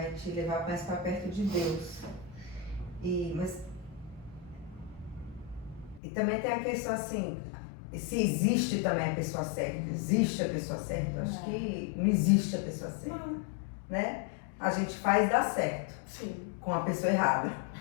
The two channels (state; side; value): drops out; right; at 6.0 s